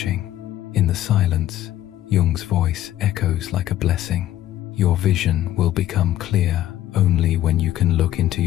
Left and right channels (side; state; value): right; quieter; 13.2 dB